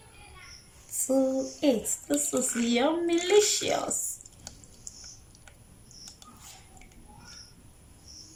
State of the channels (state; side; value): identical; both; correlation 1.00